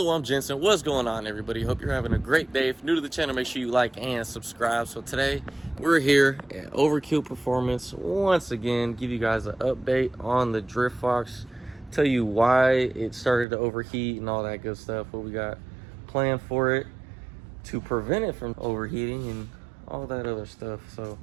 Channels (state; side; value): drops out; left; at 13.5 s